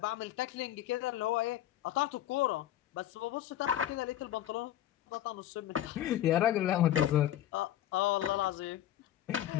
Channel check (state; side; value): quieter; right; 12.5 dB